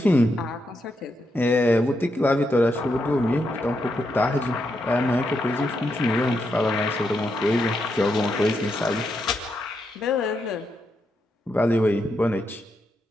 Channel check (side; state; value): both; normal; correlation 0.82